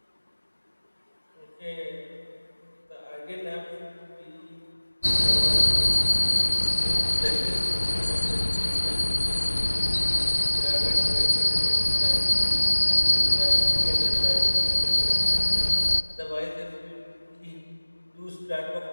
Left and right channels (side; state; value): both; inverted; correlation -1.00